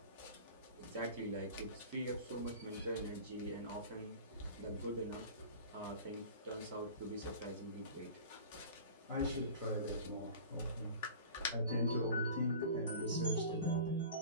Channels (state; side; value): inverted; both; correlation -0.39